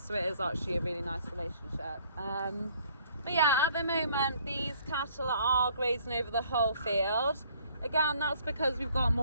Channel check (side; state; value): both; inverted; correlation -0.59